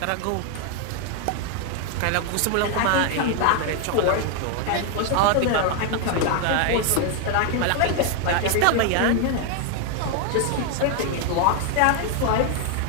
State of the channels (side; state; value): both; different; correlation 0.01